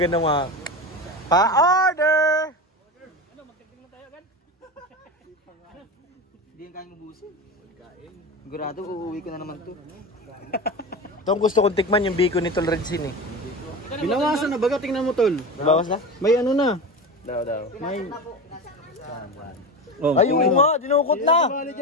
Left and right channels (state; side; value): normal; both; correlation 0.25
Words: mga pa-order! Ano, magdagdag na tayo agad? Hindi yung kayang mabusin. Pagkain. Sigurado, uuwi ko na naman to. Ito ang gusto kong tikman yung bacon ni Tol Redsin eh. Binawasan na baga, tingnan mo tol. Nabawas na? May ano na. Daw. May... Ay, oo nga, dinukot na! Bali